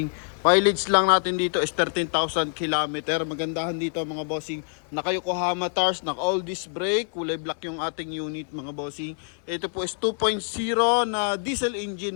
Mileage lang natin dito is 13,000 km. Magandahan dito mga bossing, naka Yokohama tires, naka all disc brake, kulay black yung ating unit mga bossing. Ito po is 2.0 na diesel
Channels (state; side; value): silent; right; 58 dB below the other